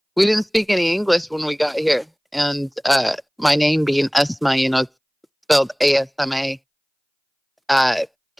We didn't speak any English when we got here. And my name being Esma, it's spelled ASMA,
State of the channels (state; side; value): identical; both; correlation 1.00